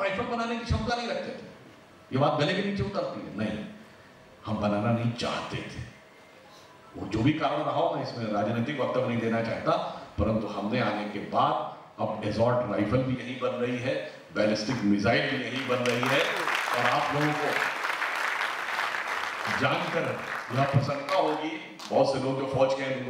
राइफल बनाने की क्षमता नहीं रखते थे। ये बात गले के नीचे उतरती है। नहीं, हम बनाना नहीं चाहते थे। वो जो भी कारण रहा हो, मैं इसमें राजनीतिक वक्तव्य नहीं देना चाहता, परंतु हमने आने के बाद अब एसॉल्ट राइफल भी यही बन रही है, बैलिस्टिक मिसाइल भी यही बन रही है। और आप लोगों को जानकर यह प्रसन्नता होगी, बहुत से लोग जो फौज के हैं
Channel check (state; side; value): identical; both; correlation 1.00